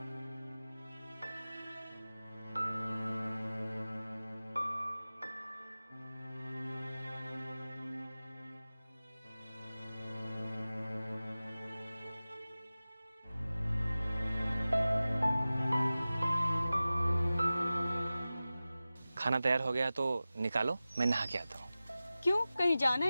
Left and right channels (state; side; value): inverted; both; correlation -0.96